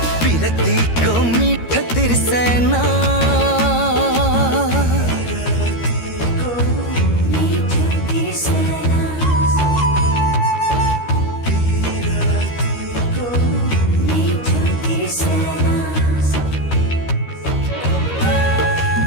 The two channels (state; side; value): late; right; 13 ms